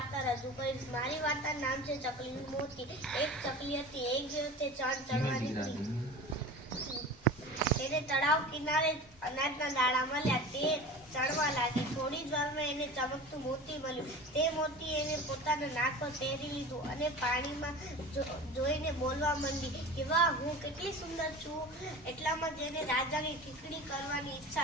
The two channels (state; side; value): normal; both; correlation 0.35